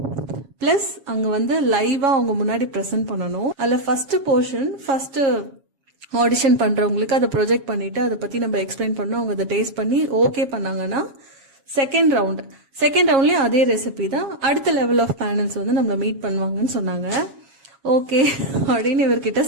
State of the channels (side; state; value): left; late; 7.3 ms